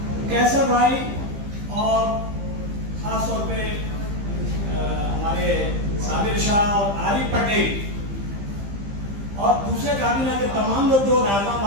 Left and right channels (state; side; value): late; left; 15 ms